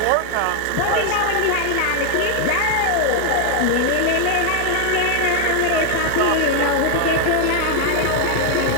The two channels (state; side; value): different; both; correlation 0.00